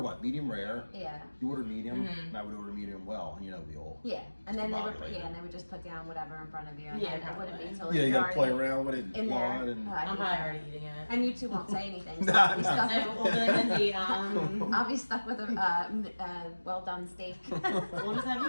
what? Medium rare. Yeah. You order medium, and I would order medium well, and we all. Yeah, and then they would, Discombobulated. and they would just put down whatever in front of you. And Yeah, then it wouldn't be probably. until Yeah, you gotta play already around with it, in there. blood, and Oh, I I'm hate probably that. already eating it. And you two won't say anything. So Nah, I'll, be nah. stuck We'll with, do it Lindsay. I'll be stuck with a well done steak. We'll just have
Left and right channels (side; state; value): both; inverted; correlation -1.00